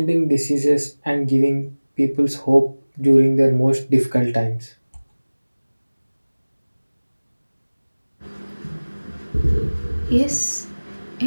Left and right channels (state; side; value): inverted; both; correlation -1.00